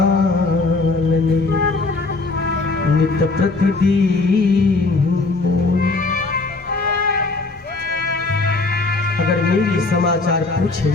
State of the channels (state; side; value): quieter; right; 3.6 dB